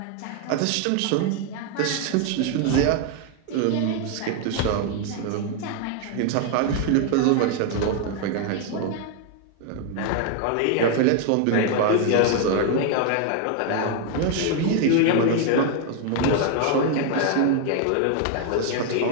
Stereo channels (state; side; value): different; both; correlation 0.00